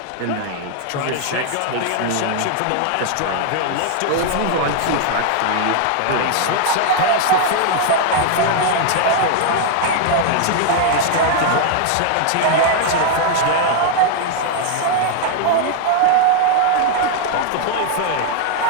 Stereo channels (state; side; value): different; both; correlation 0.00